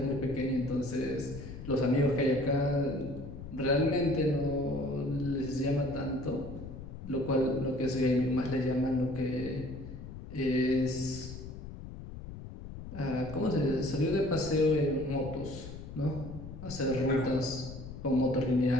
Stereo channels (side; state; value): left; noise; rumble, 11 dB below the sound